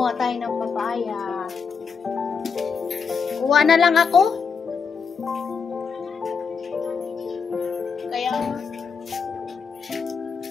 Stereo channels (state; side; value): quieter; right; 5.8 dB